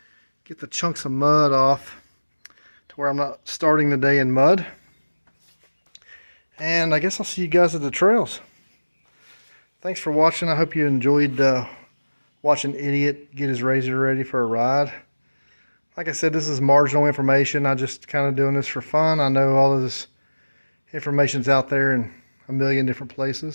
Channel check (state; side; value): inverted; both; correlation -1.00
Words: get the chunks of mud off to where I'm not starting the day in mud. And I guess I'll see you guys at the trails. Thanks for watching. I hope you enjoyed watching Idiot get his RZR ready for a ride. Like I said, this is marginal information. I'm just kind of doing this for fun. I know all of this information's out there in a million different